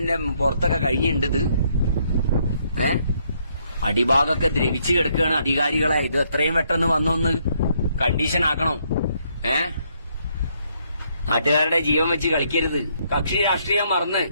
പുറത്തൊക്കെ കഴിഞ്ഞിട്ടുണ്ട് ഇത്. അടിഭാഗമൊക്കെ ദ്രവിച്ചു കിടക്കുകയാണ്. അധികാരികളെ ഇത് എത്രയും പെട്ടെന്ന് വന്നൊന്ന് കണ്ടീഷൻ ആക്കണം. നാട്ടുകാരുടെ ജീവൻ വെച്ച് കളിക്കരുത്. കക്ഷി രാഷ്ട്രീയം മറന്ന്,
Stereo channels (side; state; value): both; inverted; correlation -0.72